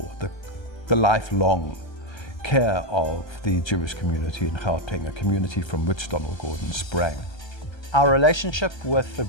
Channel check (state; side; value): late; right; 1.3 ms